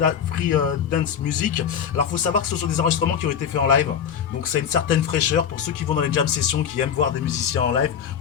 Dance Music. Alors il faut savoir que ce sont des enregistrements qui ont été faits en live, donc ça a une certaine fraîcheur. Pour ceux qui vont dans les jam sessions, qui aiment voir des musiciens en live,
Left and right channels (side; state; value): right; quieter; 8.0 dB